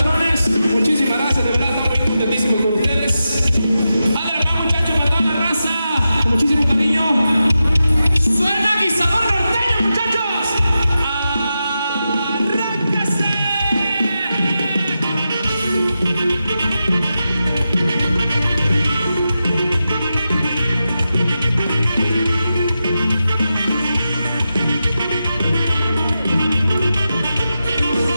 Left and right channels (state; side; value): inverted; both; correlation -0.90